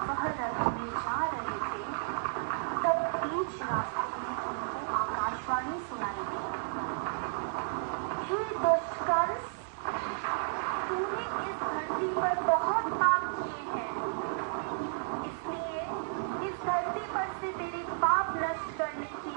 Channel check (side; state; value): left; silent; digital silence